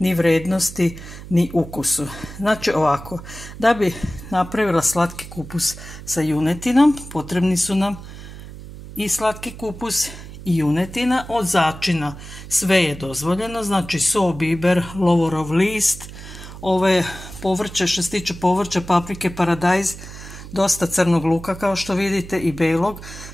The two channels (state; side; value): noise; right; hum, 14 dB below the sound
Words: vrednosti ni ukusu. Znači ovako, da bi napravila slatki kupus sa junetinom potrebni su nam i slatki kupus i junetina. Od začina sve je dozvoljeno, znači so, biber, lovorov list, ove povrće, što se tiče povrća, paprike, paradajz, dosta crnog luka kao što vidite i belog.